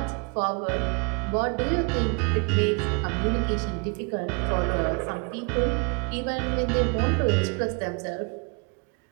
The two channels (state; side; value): quieter; left; 34.1 dB